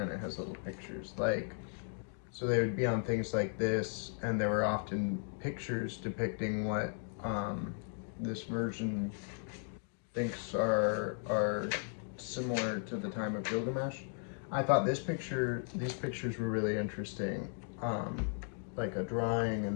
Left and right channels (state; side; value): silent; right; 54 dB below the other